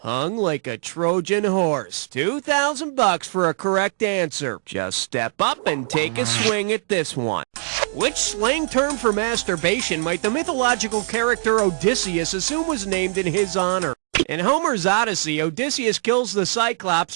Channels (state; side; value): silent; left; 64 dB below the other